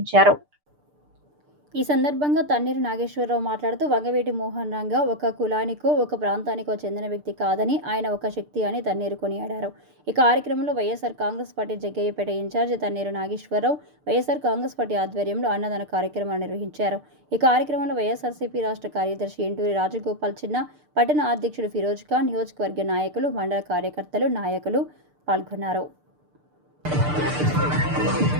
ఈ సందర్భంగా తన్నీరు నాగేశ్వరరావు మాట్లాడుతూ వంగవీటి మోహన్ రంగ ఒక కులానికో ఒక ప్రాంతానికో చెందిన వ్యక్తి కాదని ఆయన ఒక శక్తి అని తన్నీరు కొనియాడారు. ఈ కార్యక్రమంలో YSR Congress party Jaggayyapeta incharge Tanneeru Nageswararao YSR Congress party ఆధ్వర్యంలో అన్నదాన కార్యక్రమాన్ని నిర్వహించారు. ఈ కార్యక్రమంలో వైఎస్ఆర్సీపీ రాష్ట్ర కార్యదర్శి ఎంటూరి రాజగోపాల్ చిన్న, పట్టణ అధ్యక్షుడు ఫిరోజ్ ఖాన్, నియోజకవర్గ నాయకులు, మండల కార్యకర్తలు, నాయకులు పాల్గొన్నారు.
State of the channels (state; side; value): late; left; 6.7 ms